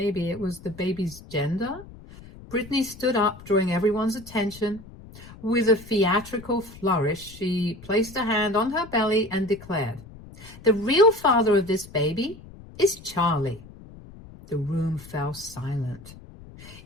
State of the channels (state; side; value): noise; left; rumble, 18 dB below the sound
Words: it was the baby's gender? Brittany stood up, drawing everyone's attention. With a theatrical flourish, she placed a hand on her belly and declared, "The real father of this baby is Charlie." The room fell silent.